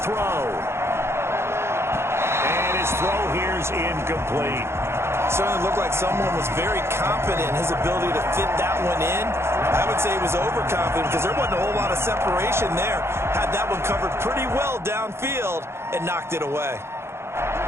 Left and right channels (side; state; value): left; late; 0.12 ms